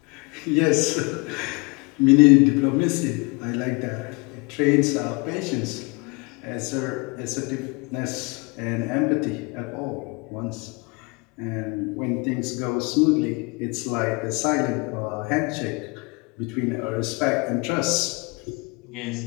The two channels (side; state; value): right; quieter; 28.6 dB